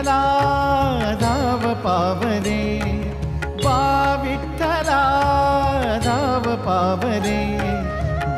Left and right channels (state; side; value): identical; both; correlation 1.00